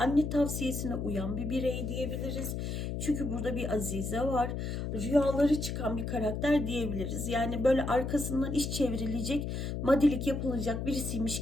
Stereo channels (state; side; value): noise; left; hum, 3 dB below the sound